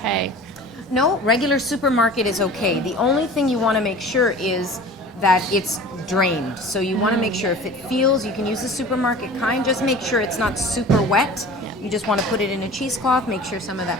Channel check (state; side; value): normal; both; correlation 0.40